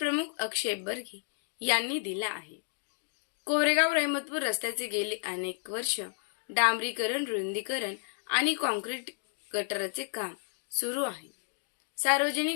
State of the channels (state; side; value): silent; right; digital silence